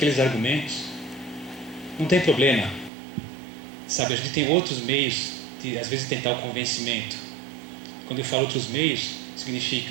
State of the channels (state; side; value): drops out; left; at 2.9 s